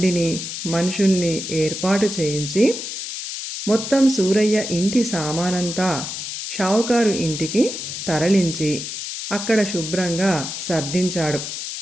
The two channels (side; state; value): left; noise; hiss, 6 dB below the sound